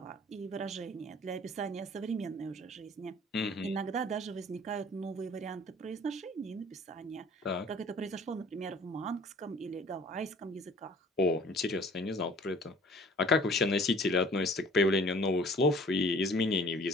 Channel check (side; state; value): both; normal; correlation 0.51